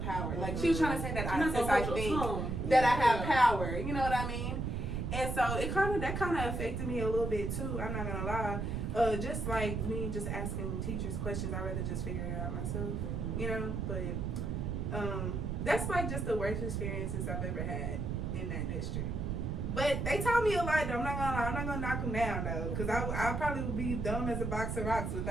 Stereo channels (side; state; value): right; noise; rumble, 2 dB below the sound